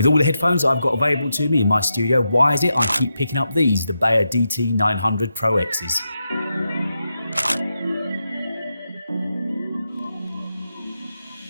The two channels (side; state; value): both; inverted; correlation -0.87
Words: all the headphones I've got available to me in my studio, why is it I keep picking up these, the Beyerdynamic DT 900 Pro X's?